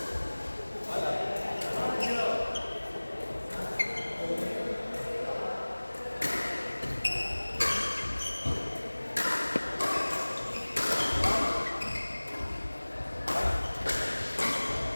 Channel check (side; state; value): both; inverted; correlation -1.00